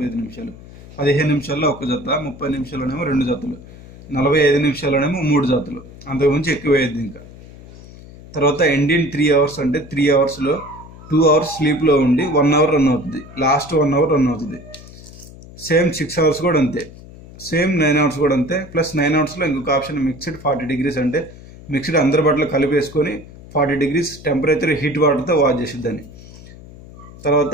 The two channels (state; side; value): noise; left; hum, 18 dB below the sound